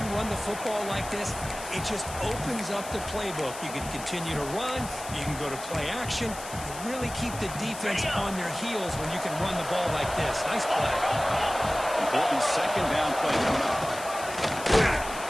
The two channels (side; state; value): left; noise; hiss, 12 dB below the sound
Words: run the football like this, it just opens up the playbook. You can continue to run. You can go to play action. You really keep the defense on their heels when you can run the ball like this. Nice play. Important second down play coming up.